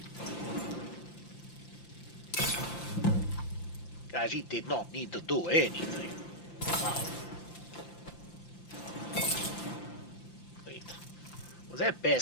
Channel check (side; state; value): right; late; 5.8 ms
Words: Khajiit did not need to do anything. Wow. Wait. Was that